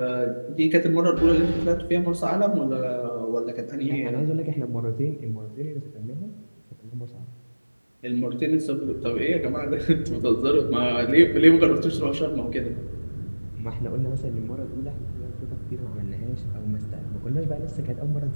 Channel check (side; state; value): both; inverted; correlation -1.00